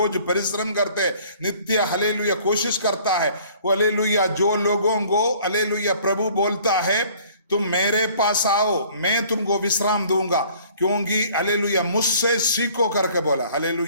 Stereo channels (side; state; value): both; inverted; correlation -0.54